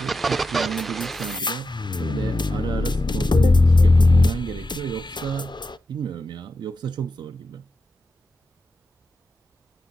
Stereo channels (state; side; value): normal; both; correlation 0.90